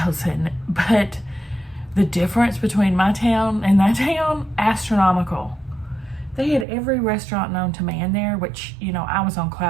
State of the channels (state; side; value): drops out; left; at 6.7 s